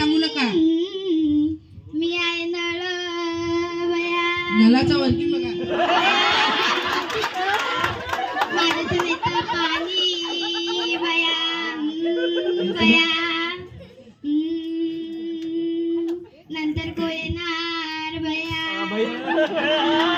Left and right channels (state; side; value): identical; both; correlation 1.00